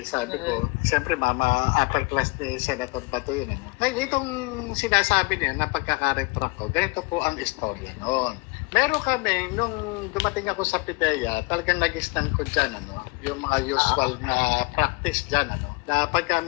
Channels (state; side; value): quieter; right; 26.7 dB